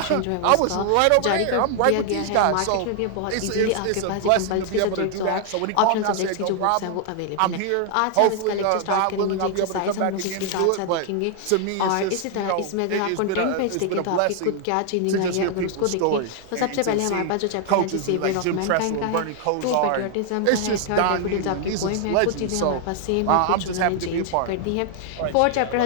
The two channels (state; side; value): different; both; correlation 0.00